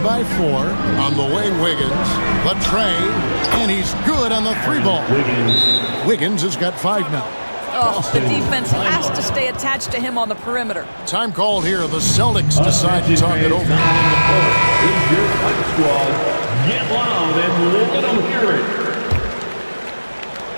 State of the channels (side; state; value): both; inverted; correlation -1.00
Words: by 4. On the way, Wiggins. The tray. And he's good on the 3-ball. Wiggins has got 5 now. Oh, the defense has to stay attached to him on the perimeter. Time called here. The Celtics decide to talk it over. Get loud and let them hear it.